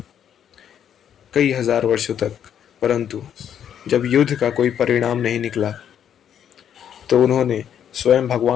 कई हजार वर्षों तक, परंतु जब युद्ध का कोई परिणाम नहीं निकला तो उन्होंने स्वयं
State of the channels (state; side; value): quieter; right; 9.2 dB